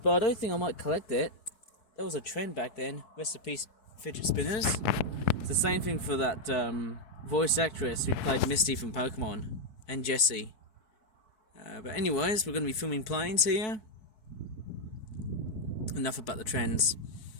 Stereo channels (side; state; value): right; late; 4.7 ms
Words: I don't think I might collect it. That was a trend back then. Rest in peace, fidget spinners. It's the same thing for that voice actress who played Misty from Pokemon, and Jessie. But anyways, we're going to be filming planes here. Enough about the trends.